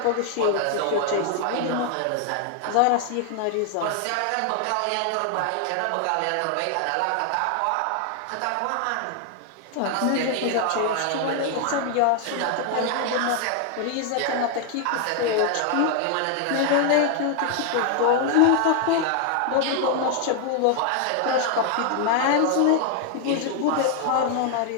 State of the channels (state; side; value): different; both; correlation 0.00